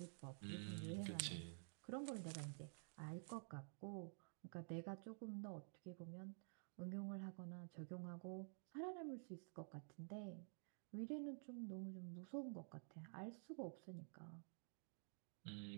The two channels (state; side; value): silent; left; digital silence